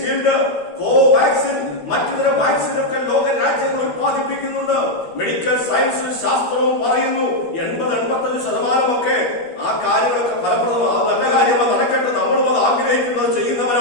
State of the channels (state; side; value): late; right; 13 ms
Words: കോവാക്സിൻ, മറ്റു വാക്സിനൊക്കെ ലോക രാജ്യങ്ങൾ ഉത്പാദിപ്പിക്കുന്നുണ്ട്. മെഡിക്കൽ സയൻസും ശാസ്ത്രവും പറയുന്നു 80-85% ആ കാര്യങ്ങളൊക്കെ ഫലപ്രദമാണ്. അത് നല്ല കാര്യമാണ്, നടക്കട്ടെ. നമ്മളും അത് ആഗ്രഹിക്കുന്നത്,